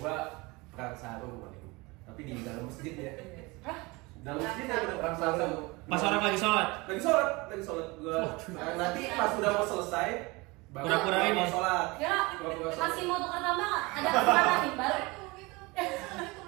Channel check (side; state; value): left; quieter; 24.4 dB